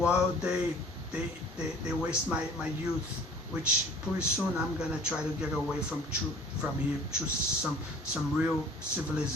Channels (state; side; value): normal; both; correlation 0.49